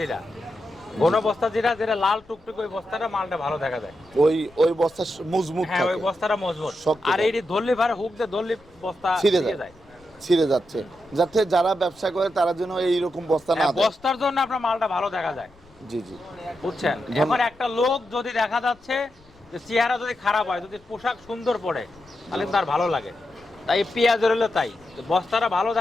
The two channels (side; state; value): left; noise; rumble, 28 dB below the sound